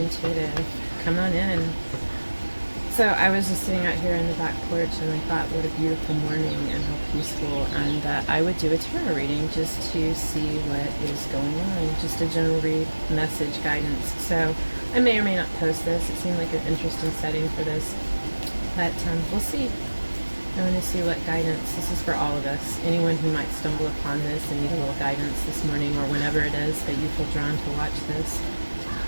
Come on in. So I was just sitting out here on the back porch and I thought what a beautiful morning and how peaceful, and that I would do a tarot reading just to see what is going on. Just a general read, message, guidance. So I may or may not post this. It seemed like an interesting setting for this. But we'll see. I want to see what guidance. This is for all of us. Anyone who might stumble upon this and need a little guidance this morning or whenever it is that you feel drawn to watch this.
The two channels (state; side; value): inverted; both; correlation -1.00